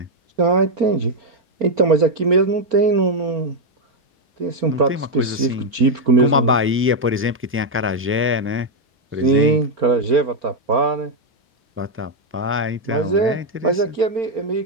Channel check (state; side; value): normal; both; correlation 0.01